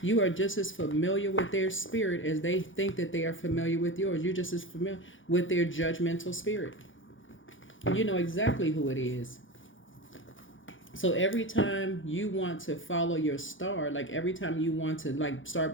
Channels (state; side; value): late; right; 0.57 ms